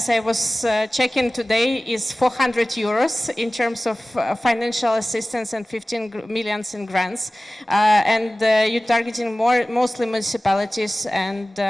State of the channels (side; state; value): both; normal; correlation 0.97